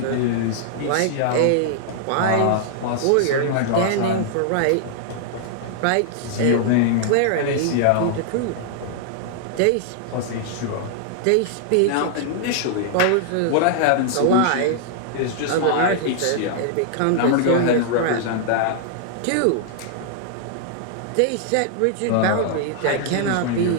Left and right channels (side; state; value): both; different; correlation -0.01